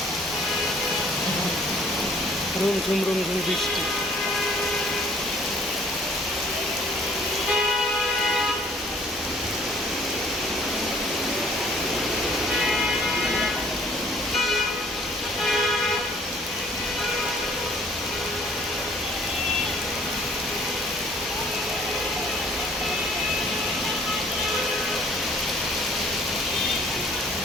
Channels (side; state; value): both; normal; correlation 0.58